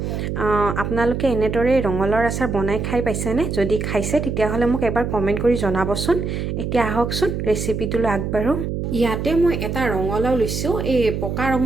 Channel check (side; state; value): right; noise; hum, 3 dB below the sound